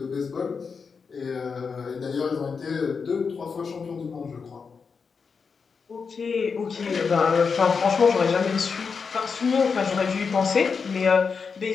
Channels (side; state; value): right; quieter; 5.5 dB